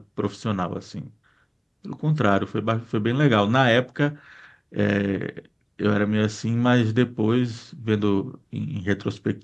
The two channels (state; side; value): identical; both; correlation 1.00